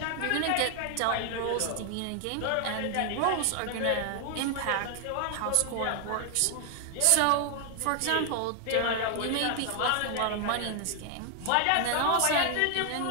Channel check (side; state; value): both; different; correlation 0.00